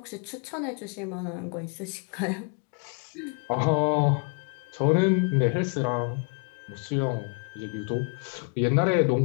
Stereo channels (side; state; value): right; quieter; 36.9 dB